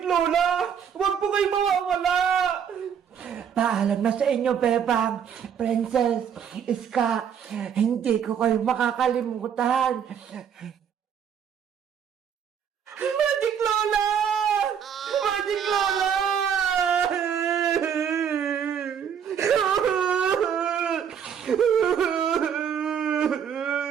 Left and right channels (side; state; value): left; quieter; 8.0 dB